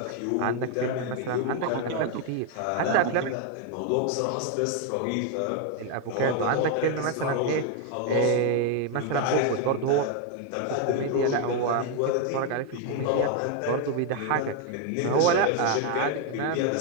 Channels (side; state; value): both; different; correlation 0.01